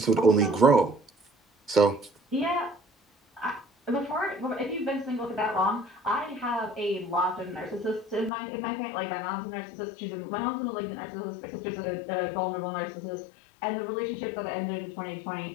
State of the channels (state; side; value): drops out; right; at 8.3 s